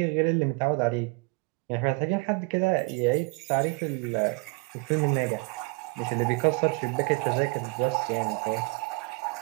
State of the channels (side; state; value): left; quieter; 29.2 dB